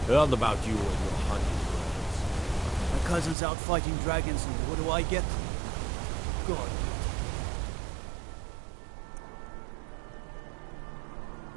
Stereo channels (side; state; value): left; drops out; at 3.4 s